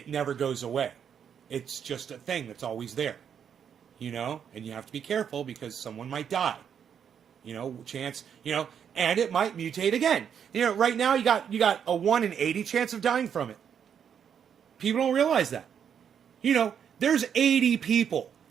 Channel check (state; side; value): quieter; left; 8.0 dB